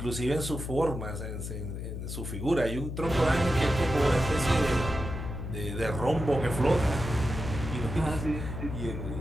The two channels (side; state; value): left; noise; hum, 6 dB below the sound